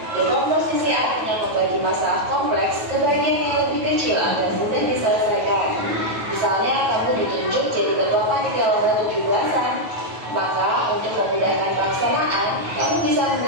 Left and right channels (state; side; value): late; left; 9.4 ms